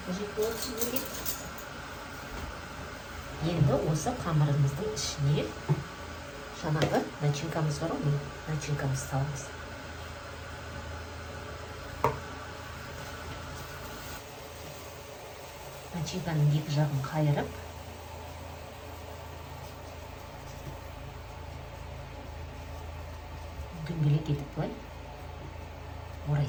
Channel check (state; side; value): identical; both; correlation 1.00